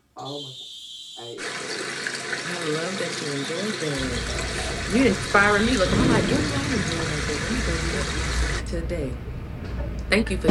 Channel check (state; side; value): identical; both; correlation 1.00